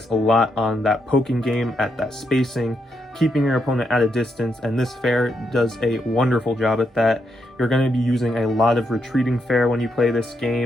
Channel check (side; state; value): both; normal; correlation 0.80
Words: a lot on that poking game at that spacing, keeping your opponent at a distance, and this fair does a wonderful job at that. You're going to be using a lot of retreating fair when you play this